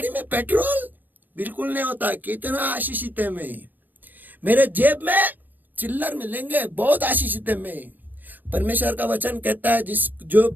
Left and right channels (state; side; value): late; left; 0.086 ms